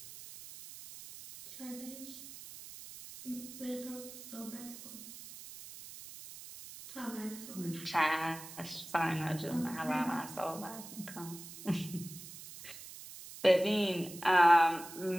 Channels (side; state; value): right; noise; hiss, 14 dB below the sound